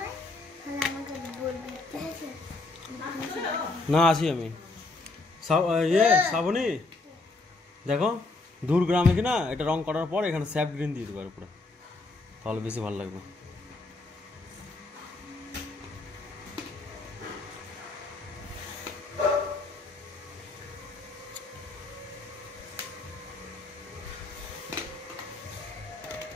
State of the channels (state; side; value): quieter; right; 3.3 dB